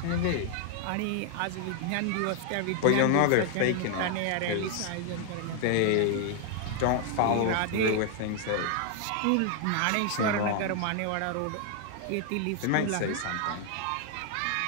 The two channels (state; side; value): different; both; correlation 0.00